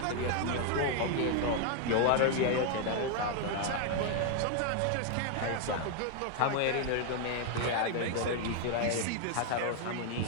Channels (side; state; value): both; different; correlation 0.00